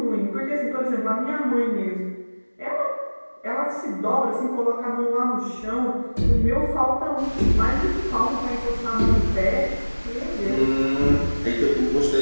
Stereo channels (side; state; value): both; inverted; correlation -1.00